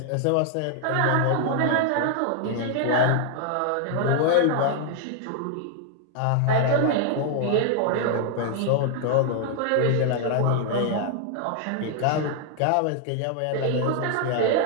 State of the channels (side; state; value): both; different; correlation 0.00